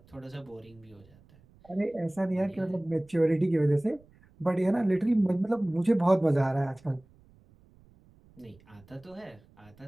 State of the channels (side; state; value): right; noise; rumble, 28 dB below the sound